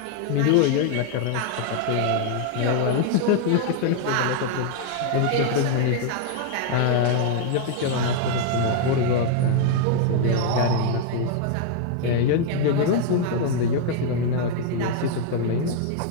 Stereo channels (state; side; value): different; both; correlation 0.00